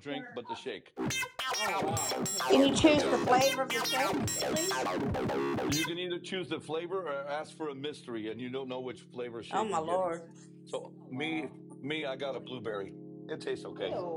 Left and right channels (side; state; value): both; identical; correlation 1.00